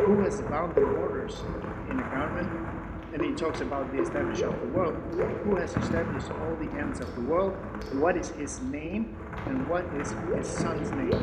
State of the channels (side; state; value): both; identical; correlation 1.00